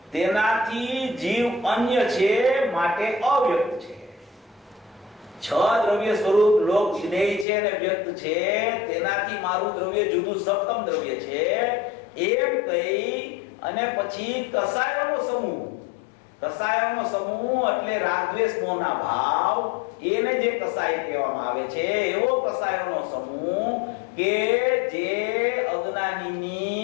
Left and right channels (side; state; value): right; drops out; at 7.5 s